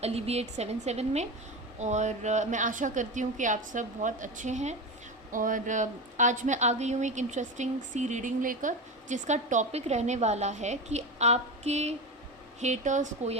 अलीविएट 77 में। और मैं आशा करती हूँ कि आप सब बहुत अच्छे हैं। और आज मैं आ गई हूँ एक इंटरेस्टिंग सी रीडिंग लेकर, जिसका टॉपिक रहने वाला है कि आपके हेटर्स को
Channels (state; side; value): normal; both; correlation 0.22